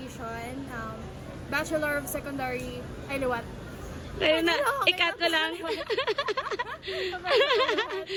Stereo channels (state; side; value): identical; both; correlation 1.00